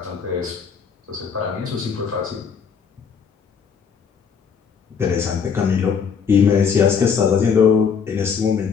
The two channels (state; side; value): quieter; right; 6.5 dB